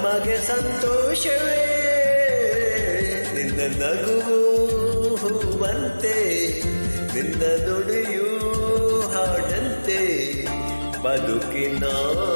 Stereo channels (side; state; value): both; inverted; correlation -1.00